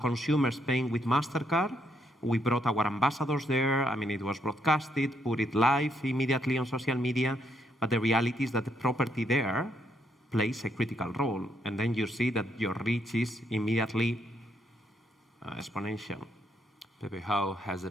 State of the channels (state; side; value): normal; both; correlation 0.75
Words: consumers paying with Mastercard. We brought our ambassadors there. I mean, it was broadcasted, put it live immediately on social media. But the reality is that the property there plays a critical role. And then you see that your reach is immediately exponential. Pepe, how has